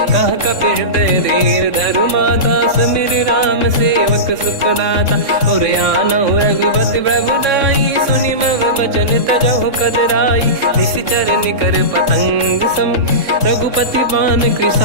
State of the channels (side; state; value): left; late; 3.6 ms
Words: कह कपि हृदय धीर धरु माता समिर राम सेवक सुखदाता और आनहु रघुपति प्रभु दाई सुनि मम बचन तजहु कदराई निश्चर निकर पतंग सम रघुपति पान